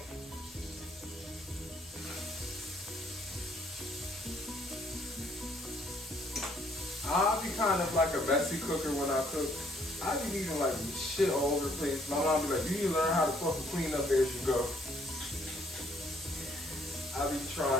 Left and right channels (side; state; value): both; normal; correlation 0.66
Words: I'll be kind of like a messy cooker when I cook. I be leaving like shit all over the place. My mom be like, you need to learn how to fucking clean up as you go. I be